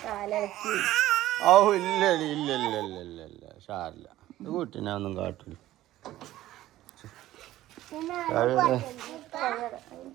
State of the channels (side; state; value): left; quieter; 14.8 dB